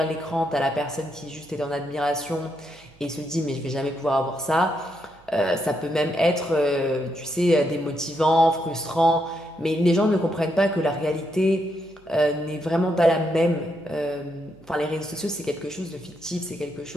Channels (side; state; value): right; noise; hum, 28 dB below the sound